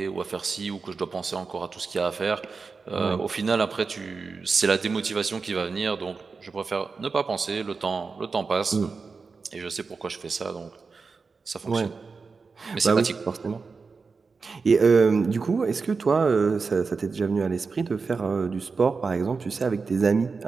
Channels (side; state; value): left; quieter; 4.7 dB